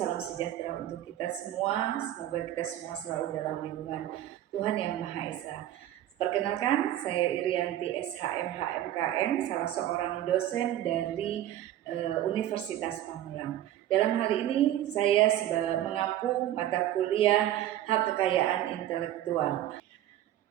sejahtera untuk kita semua. Semoga kita semua selalu dalam lindungan Tuhan Yang Maha Esa. Perkenalkan, saya Irianti SHM HMKN, salah seorang dosen dari Universitas Pamulang. Dalam hal ini saya mengampu mata kuliah Hak Kekayaan Intelektual.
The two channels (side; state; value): left; quieter; 12.7 dB